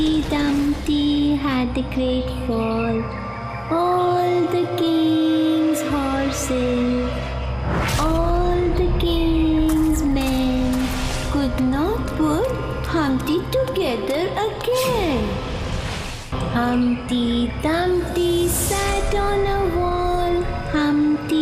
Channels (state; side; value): identical; both; correlation 1.00